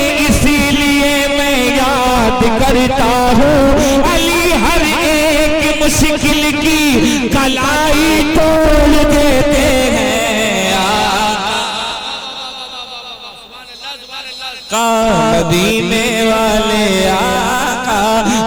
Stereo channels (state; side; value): identical; both; correlation 1.00